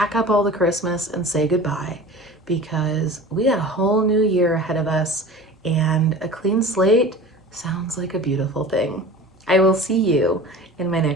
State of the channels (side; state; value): both; normal; correlation 0.38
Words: up all the Christmas and say goodbye, because we got a whole new year ahead of us, and a clean slate sounds like a beautiful thing. I will see you in my